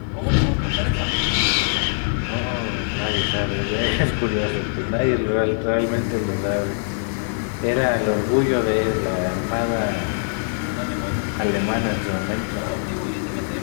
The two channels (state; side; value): silent; right; digital silence